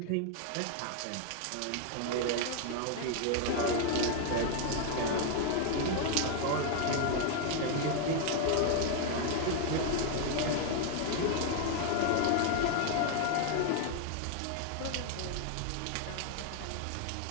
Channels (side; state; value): both; different; correlation 0.00